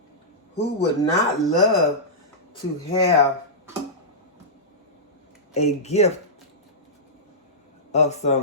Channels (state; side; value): normal; both; correlation -0.15